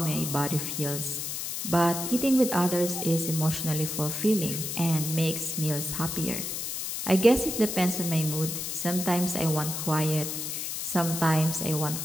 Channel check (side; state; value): left; noise; hiss, 4 dB below the sound